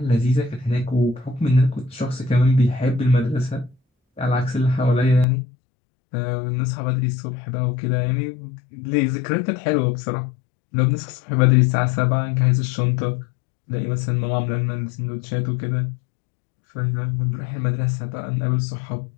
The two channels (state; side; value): drops out; right; at 5.2 s